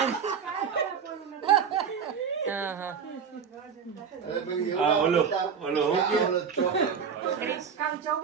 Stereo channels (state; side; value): quieter; left; 6.7 dB